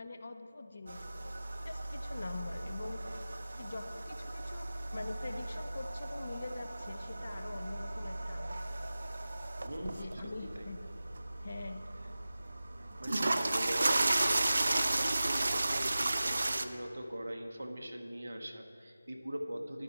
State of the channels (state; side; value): inverted; both; correlation -0.97